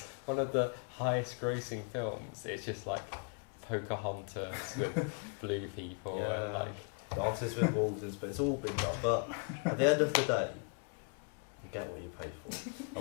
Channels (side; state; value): right; quieter; 39.5 dB